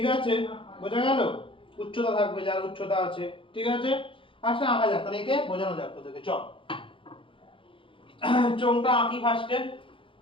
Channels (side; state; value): right; late; 0.25 ms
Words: আছে? বোঝা গেল? উচ্চতা থাকবে, যার উচ্চতা আছে, ঠিক আছে? আচ্ছা আঁকা যাক, তাহলে একে বোঝানো যাক তোদেরকে। চল চোঙটা আঁকি ফার্স্টে।